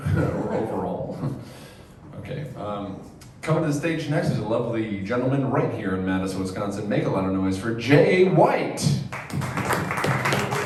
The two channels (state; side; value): identical; both; correlation 1.00